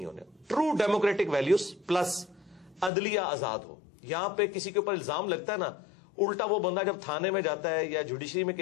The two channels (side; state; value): right; drops out; at 2.9 s